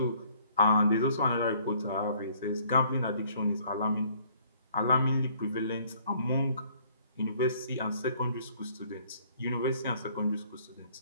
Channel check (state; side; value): inverted; both; correlation -0.60